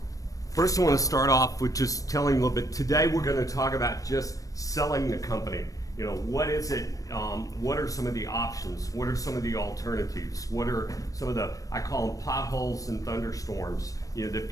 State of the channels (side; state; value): right; late; 0.16 ms